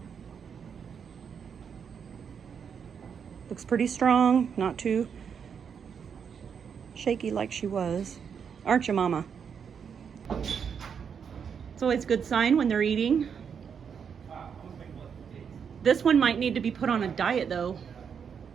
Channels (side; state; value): left; quieter; 7.0 dB